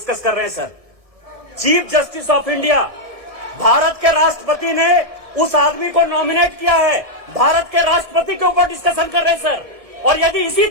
कर रहे हैं sir. Chief justice of India, Bharat के राष्ट्रपति ने उस आदमी को नॉमिनेट किया है. भारत के राष्ट्रपति के ऊपर डिस्कशन कर रहे हैं सर. और यदि इसी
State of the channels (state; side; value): late; left; 1.6 ms